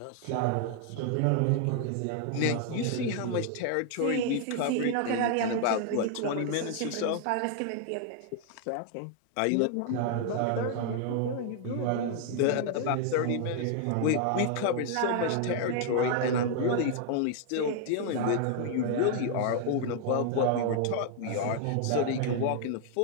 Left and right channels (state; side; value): different; both; correlation 0.00